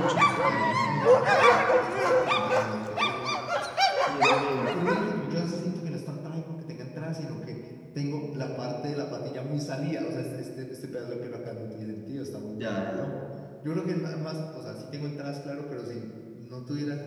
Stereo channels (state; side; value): identical; both; correlation 1.00